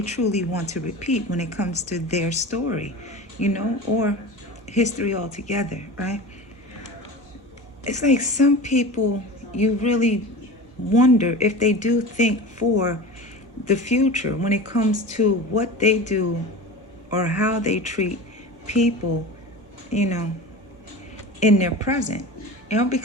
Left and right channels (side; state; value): both; normal; correlation 0.32